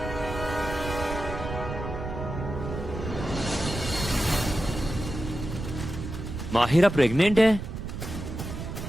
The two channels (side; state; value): right; noise; rumble, 7 dB below the sound